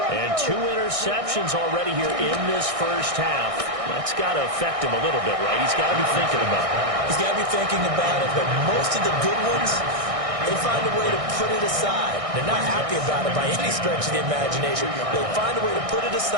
And 2 interceptions already here in this first half. That's got to affect him a little bit, right? He's got to be thinking about it. He's got to be thinking about it, but most of the good ones, they find a way to put it aside. They're not happy about it by any stretch of the imagination. They find a way to put it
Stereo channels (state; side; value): late; left; 1.6 ms